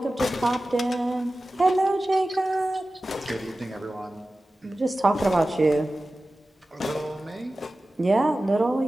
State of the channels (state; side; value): normal; both; correlation 0.95